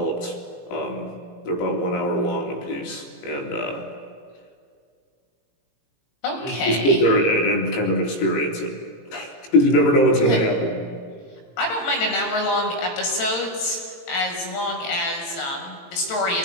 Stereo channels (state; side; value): late; right; 18 ms